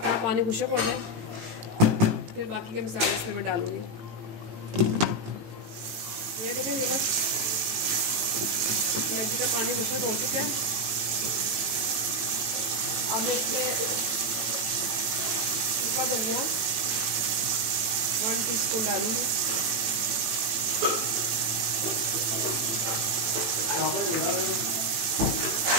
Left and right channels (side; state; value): left; late; 18 ms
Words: पानी खुश्क हो जाए, फिर बाकी के मसाले इसमें मैं डालूंगी। ये देखें, ये बस कलेजी का पानी खुश्क हो चुका है। अब मैं इसमें सूखा धनिया 1 टीस्पून डालूंगी